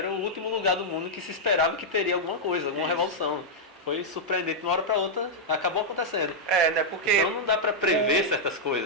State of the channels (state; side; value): normal; both; correlation -0.05